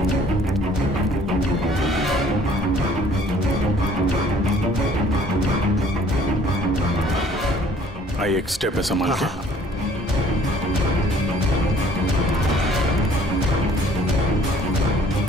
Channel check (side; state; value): both; normal; correlation 0.56